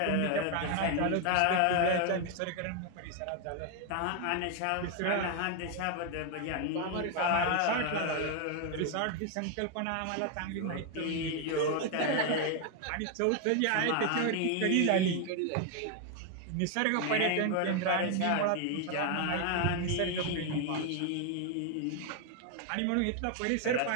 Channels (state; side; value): different; both; correlation 0.01